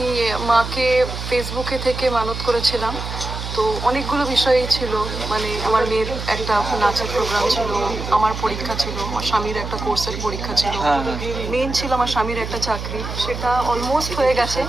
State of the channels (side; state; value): right; noise; hum, 7 dB below the sound